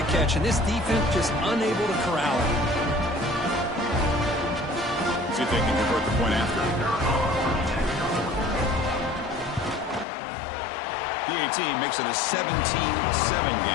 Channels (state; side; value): drops out; right; at 10.1 s